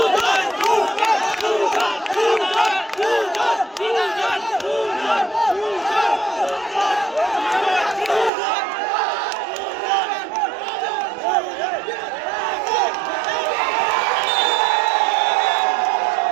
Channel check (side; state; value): left; drops out; at 8.3 s